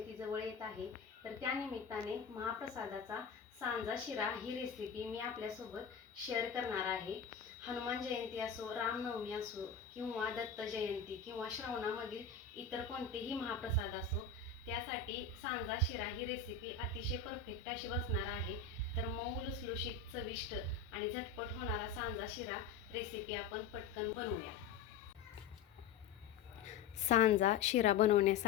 जवळ येत आहे, तर त्यानिमित्ताने महाप्रसादाचा सांजा शिरा ही रेसिपी मी आपल्यासोबत शेअर करणार आहे. हनुमान जयंती असो, रामनवमी असो किंवा दत्त जयंती किंवा श्रावणामधील इतर कोणतेही महाप्रसाद असो, त्यासाठी सांजा शिरा ही रेसिपी अतिशय परफेक्ट अशी बसणार आहे. तर मऊ लुसलुशीत चविष्ट आणि झटपट होणारा सांजा शिरा रेसिपी आपण पटकन बनवूया. सांजा शिरा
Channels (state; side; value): quieter; right; 6.1 dB